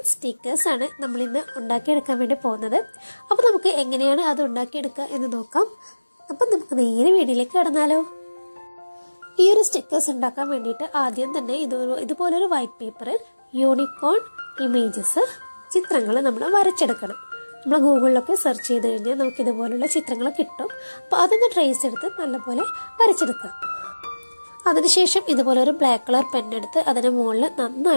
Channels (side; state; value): both; inverted; correlation -1.00